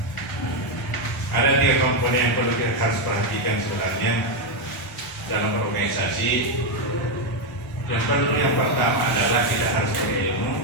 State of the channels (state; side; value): normal; both; correlation 0.04